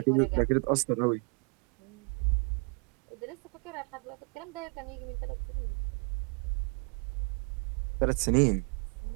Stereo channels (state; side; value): quieter; left; 34.0 dB